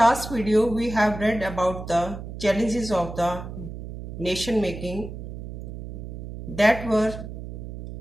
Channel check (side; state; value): right; noise; hum, 9 dB below the sound